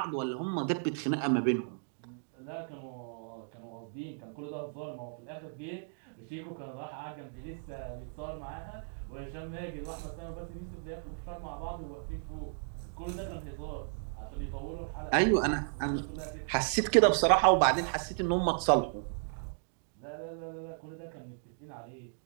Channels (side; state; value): left; silent; digital silence